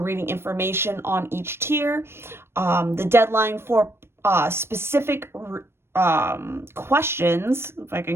reading information on each tier. The deadline for specific questions, if I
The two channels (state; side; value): late; left; 0.12 ms